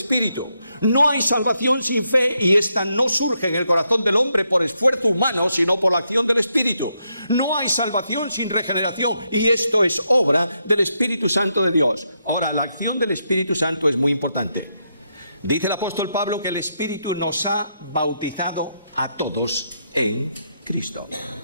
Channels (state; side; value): inverted; both; correlation -0.80